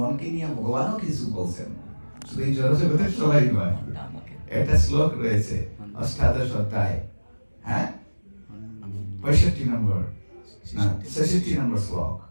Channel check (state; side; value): inverted; both; correlation -1.00